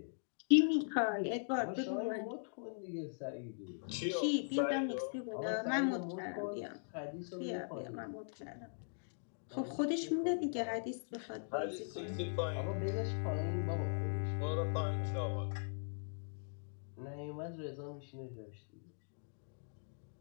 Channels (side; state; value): right; silent; digital silence